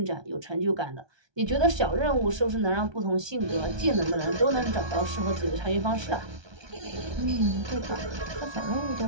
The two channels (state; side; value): late; left; 1.2 ms